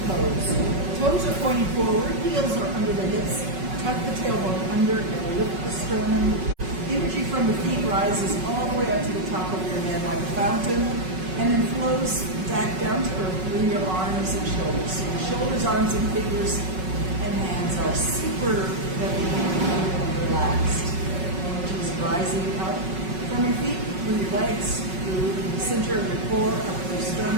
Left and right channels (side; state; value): left; late; 5.4 ms